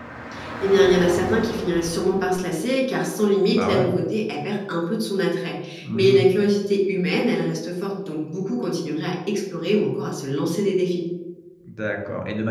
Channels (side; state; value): both; identical; correlation 1.00